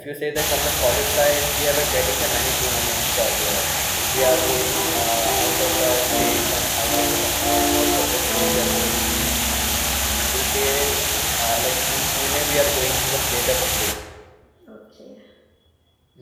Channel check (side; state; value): both; identical; correlation 1.00